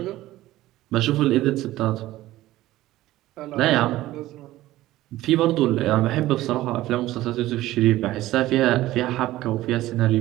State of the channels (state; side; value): quieter; left; 15.9 dB